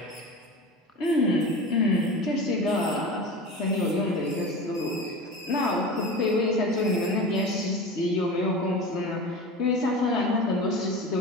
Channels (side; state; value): both; normal; correlation 0.31